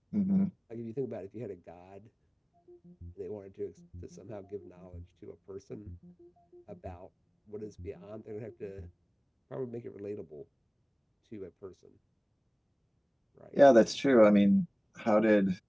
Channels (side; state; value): both; identical; correlation 1.00